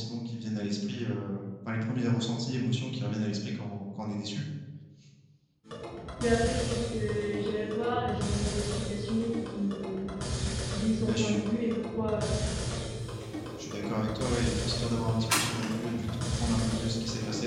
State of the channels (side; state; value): both; identical; correlation 1.00